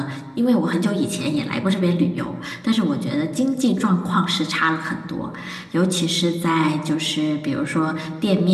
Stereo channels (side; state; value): both; identical; correlation 1.00